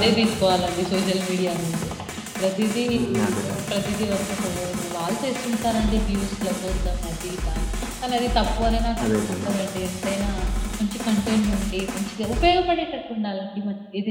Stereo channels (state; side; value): identical; both; correlation 1.00